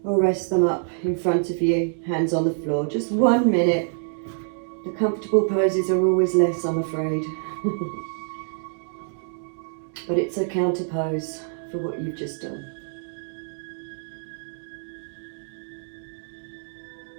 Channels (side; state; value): left; silent; digital silence